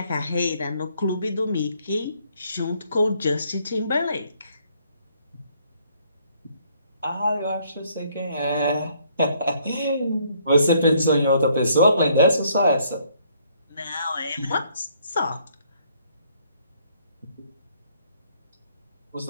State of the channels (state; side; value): inverted; both; correlation -0.66